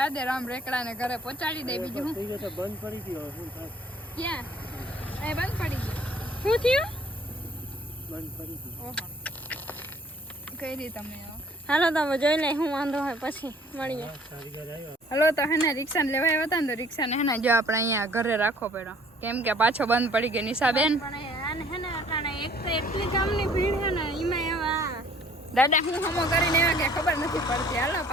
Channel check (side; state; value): both; normal; correlation 0.56